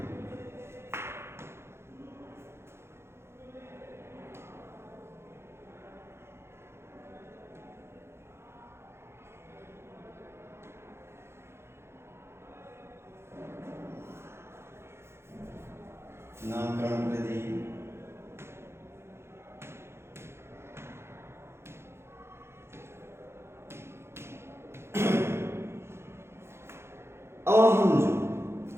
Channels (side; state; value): left; late; 0.12 ms